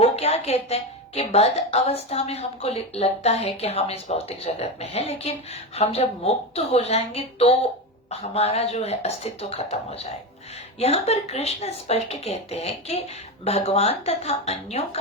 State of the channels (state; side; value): normal; both; correlation 0.17